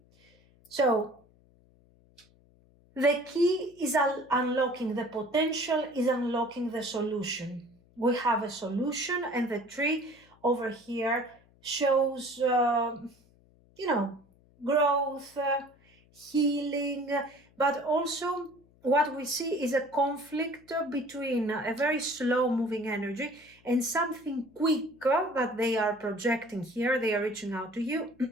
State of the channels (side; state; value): left; noise; hum, 30 dB below the sound